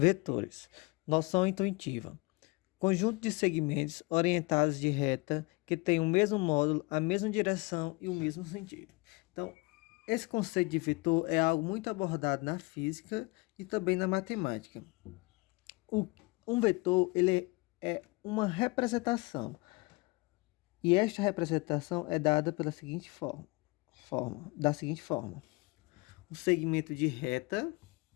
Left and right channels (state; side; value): quieter; right; 26.0 dB